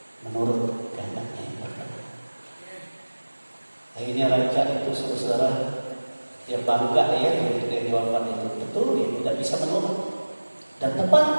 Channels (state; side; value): inverted; both; correlation -1.00